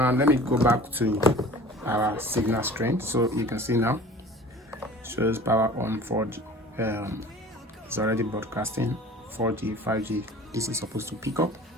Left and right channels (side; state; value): both; normal; correlation 0.43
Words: let me go back to our signal strength. So you can see now shows power on 4G. It's already broadcasting 4G, 5G. This is supposed to pick up.